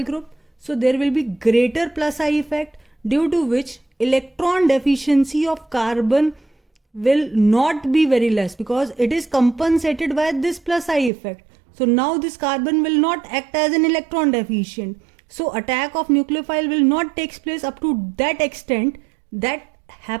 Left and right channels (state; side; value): drops out; left; at 11.1 s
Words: group, so there will be greater plus I effect, due to which electron deficiency of carbon will not be very less, because it is compensated by this plus I effect. So now this carbon will not act as an electron deficient. So attack of nucleophile will not take place up to that extent that